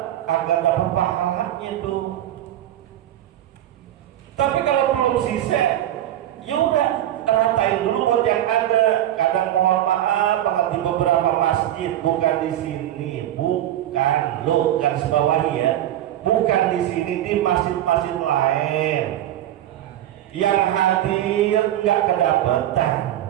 agar dapat pahalanya tuh. Tapi kalau belum sisa, ya udah ratain dulu buat yang ada. Kadang mohon maaf banget di beberapa masjid, bukan di sini, bukan lo garis bawahi ya, bukan di sini, di masjid-masjid lain yang hadir nggak kedapetan.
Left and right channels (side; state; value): left; quieter; 12.5 dB